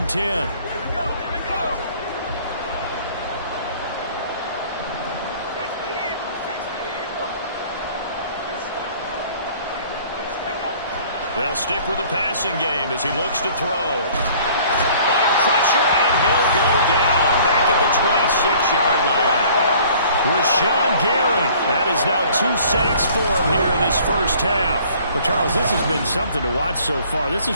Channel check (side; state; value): both; inverted; correlation -0.53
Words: 10. They'll stick with the passing game as he looks to throw. Under pressure, and he'll go down. Back at the 26-yard line. Rashawn Gary. That is now 2 sacks for him here in this first half. Well, Charles, this has been something to watch so far. This